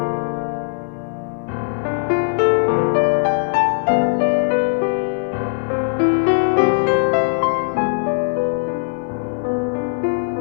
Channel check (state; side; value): silent; right; digital silence